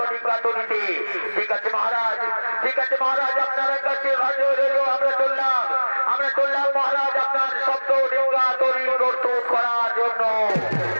তৈরিতে। ঠিক আছে মহারাজ, ঠিক আছে মহারাজ, আপনার কাছে আমরা চললাম মহারাজ আপনার সপ্তডিঙ্গা তৈরি প্রস্তুত করার জন্য।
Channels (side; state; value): both; inverted; correlation -1.00